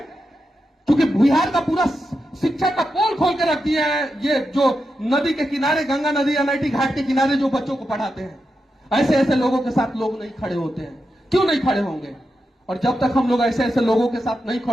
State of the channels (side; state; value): both; normal; correlation 0.87